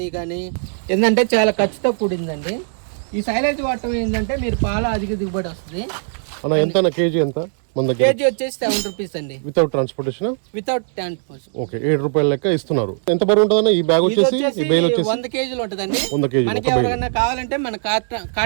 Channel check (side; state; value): left; silent; 66 dB below the other